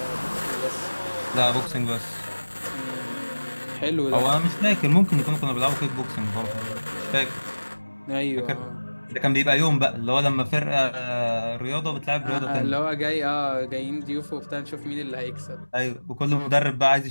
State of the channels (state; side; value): inverted; both; correlation -1.00